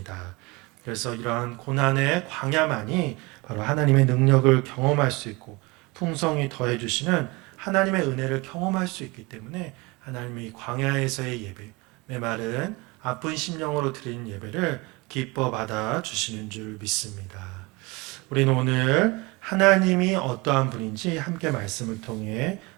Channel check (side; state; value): left; quieter; 24.8 dB